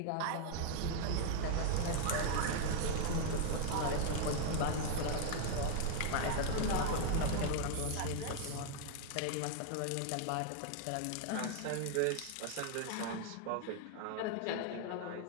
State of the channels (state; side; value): different; both; correlation 0.00